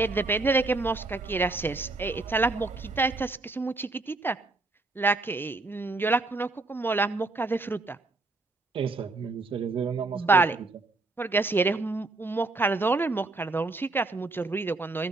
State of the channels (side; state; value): left; quieter; 3.2 dB